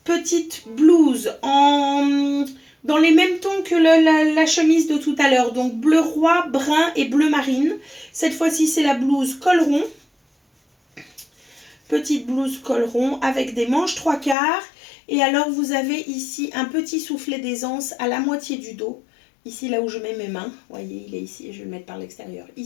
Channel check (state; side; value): drops out; right; at 14.4 s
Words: Petite blouse dans les mêmes tons que la chemise de tout à l'heure. Donc bleu roi, brun et bleu marine. Cette fois-ci, c'est la blouse col rond. Petite blouse col rond avec des manches 3/4. Et alors, vous avez ici un petit soufflet d'aisance à la moitié du dos. Ici, là où je mets mes mains. Vous voyez, il est ici. Je vais le mettre par l'extérieur.